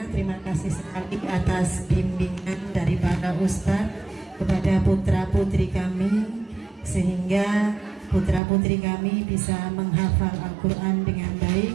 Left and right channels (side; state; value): left; drops out; at 8.4 s